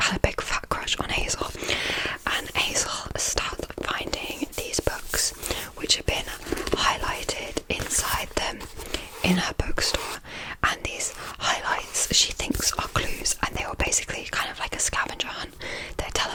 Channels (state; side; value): identical; both; correlation 1.00